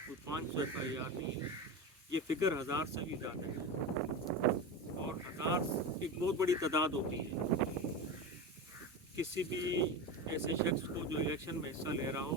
کوئی 500 FIR نہیں ہے، یہ فگر 1000 سے بھی زیادہ ہے، اور 1000 ایک بہت بڑی تعداد ہوتی ہے۔ کسی بھی ایسے شخص کو جو الیکشن میں حصہ لے رہا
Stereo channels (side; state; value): both; normal; correlation 0.23